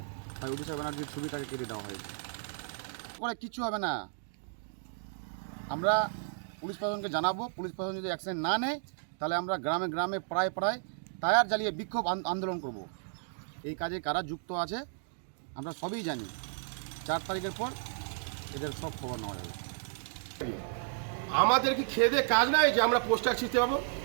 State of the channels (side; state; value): left; silent; digital silence